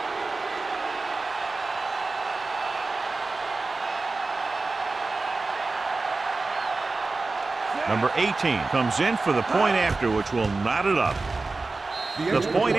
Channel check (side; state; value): left; quieter; 3.6 dB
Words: Number 18 comes in for the point after, which will knot it up. The point